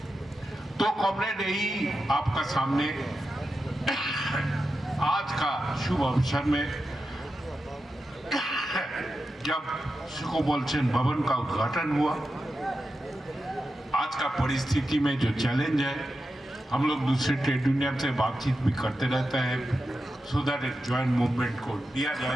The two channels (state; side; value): normal; both; correlation 0.90